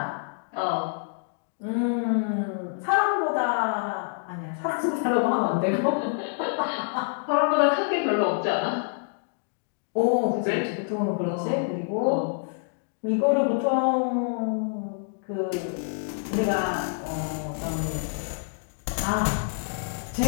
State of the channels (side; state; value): right; silent; digital silence